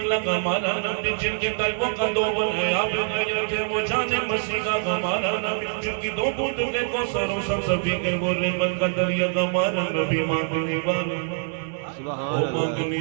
ہمارا نبی, جن کے طیبوں کا دو بنے آپ گیا تھے وہ جانے مسیح کا ہمارا نبی, جن کی دو بوندے کو سروں سب سبھی کے وہ رحمت کا دریا ہمارا نبی. مانگنے والوں سبحان اللہ.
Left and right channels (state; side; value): silent; left; 62 dB below the other